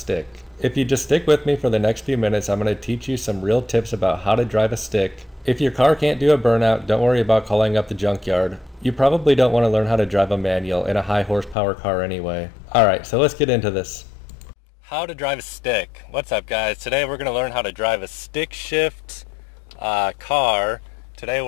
If you just stick with me for the next few minutes, I'm going to teach you some real tips about how to drive a stick. If your car can't do a burnout, don't worry about calling up the junkyard. You probably don't want to learn how to drive a manual in a high horsepower car anyway. Alright, so let's get into this. How to drive a stick. What's up guys? Today we're going to learn how to drive a stick shift car. Today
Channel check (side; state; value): right; drops out; at 11.6 s